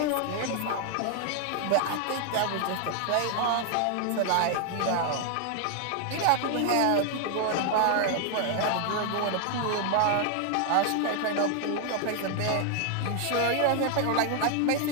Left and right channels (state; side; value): different; both; correlation 0.00